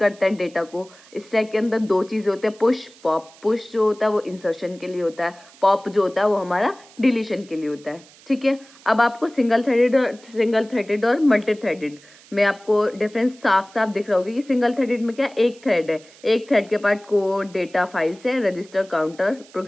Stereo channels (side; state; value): right; noise; hiss, 25 dB below the sound